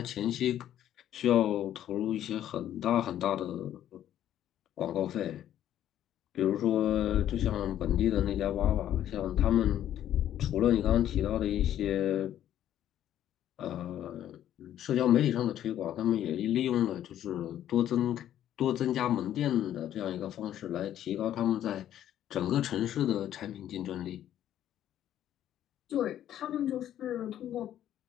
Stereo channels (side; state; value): right; quieter; 11.4 dB